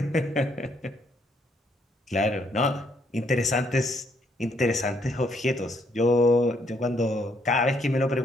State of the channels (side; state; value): both; normal; correlation 0.70